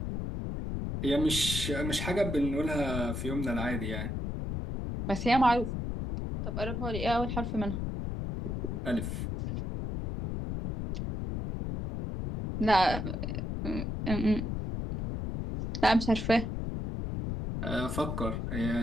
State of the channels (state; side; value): noise; left; rumble, 3 dB below the sound